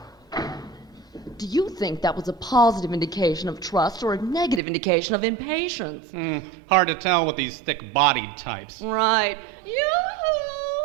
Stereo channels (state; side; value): drops out; left; at 4.6 s